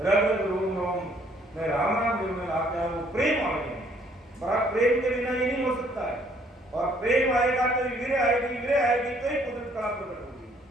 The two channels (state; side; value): normal; both; correlation 0.63